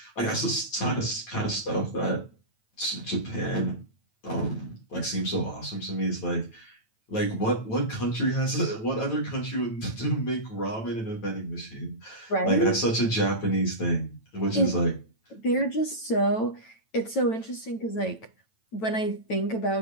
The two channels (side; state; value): right; late; 9.1 ms